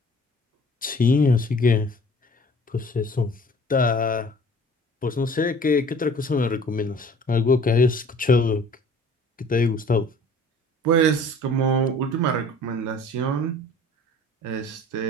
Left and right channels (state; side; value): normal; both; correlation 0.49